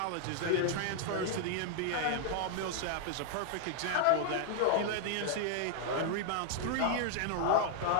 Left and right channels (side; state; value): both; different; correlation 0.00